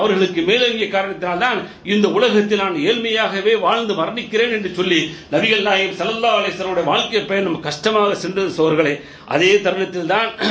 மேலங்கிய காரணத்தினால்தான் இந்த உலகத்தில் நான் ஏழ்மையாகவே வாழ்ந்து மரணிக்கிறேன் என்று சொல்லி நபிகள் நாயகம் ஸல்லல்லாஹு அலைஹி வஸல்லம் வாழ்க்கை பயணம் கஷ்டமாக சென்றது சோர்களே. அதே தருணத்தில் தான்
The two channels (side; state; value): both; identical; correlation 1.00